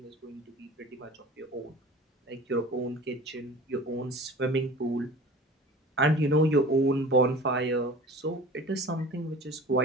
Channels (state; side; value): normal; both; correlation 0.40